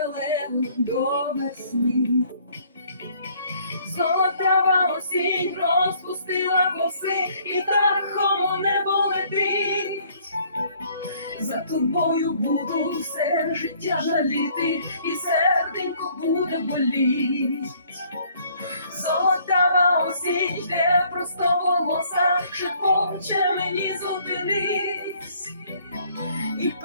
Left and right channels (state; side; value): inverted; both; correlation -0.61